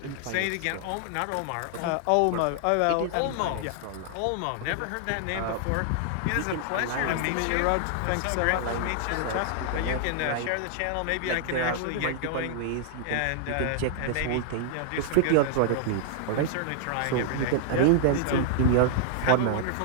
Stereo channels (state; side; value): different; both; correlation -0.01